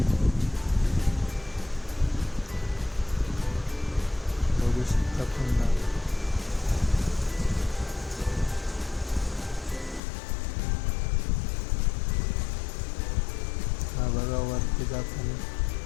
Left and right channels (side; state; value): right; drops out; at 10.0 s